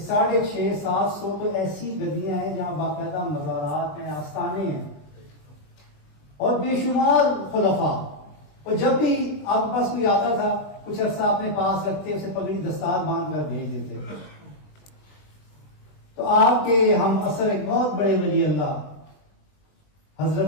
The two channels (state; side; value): late; right; 20 ms